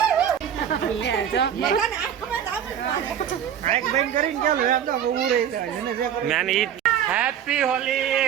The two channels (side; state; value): left; quieter; 9.3 dB